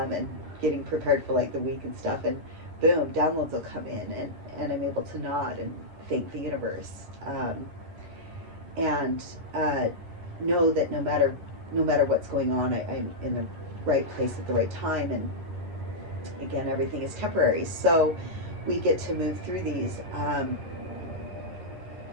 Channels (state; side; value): late; left; 10 ms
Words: getting prepared for like the week and stuff, and boom, downloads will come in, and I'm able to nod and thank the universe, and know that no matter what's going on, I'm in the right place at the right time. And again, everything is temporary, so we get to move through these.